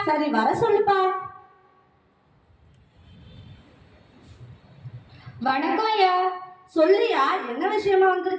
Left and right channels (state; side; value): identical; both; correlation 1.00